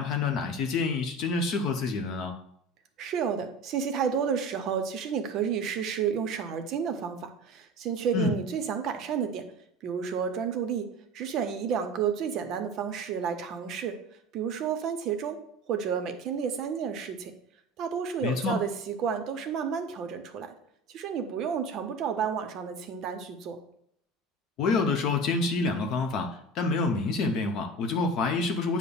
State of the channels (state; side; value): normal; both; correlation 0.34